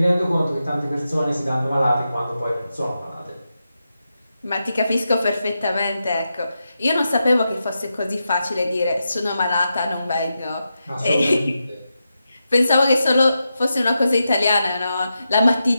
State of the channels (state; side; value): inverted; both; correlation -0.88